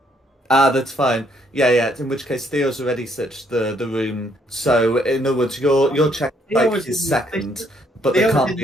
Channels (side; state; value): both; normal; correlation 0.69